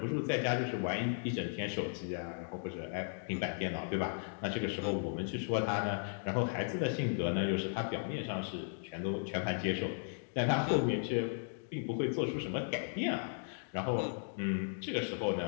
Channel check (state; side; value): silent; right; digital silence